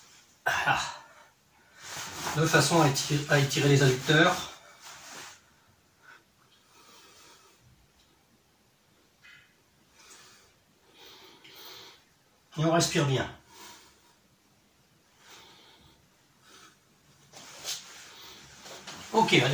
Voilà. De façon à étirer les adducteurs. Et on respire bien. Ok,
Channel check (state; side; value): identical; both; correlation 1.00